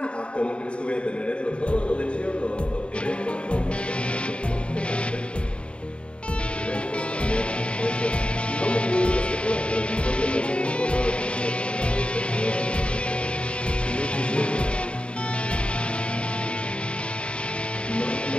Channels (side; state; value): right; late; 0.058 ms